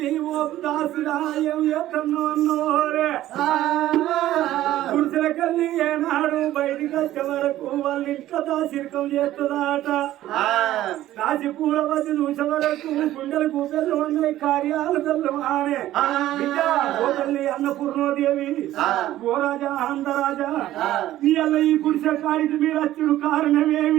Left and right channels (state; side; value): quieter; left; 14.1 dB